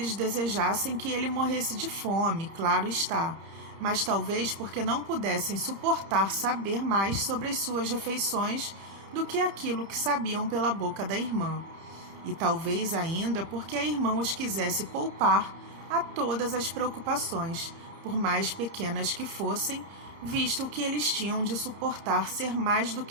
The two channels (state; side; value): late; left; 31 ms